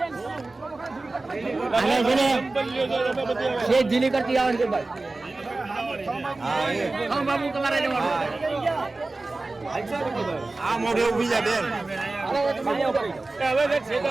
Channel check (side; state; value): left; quieter; 3.2 dB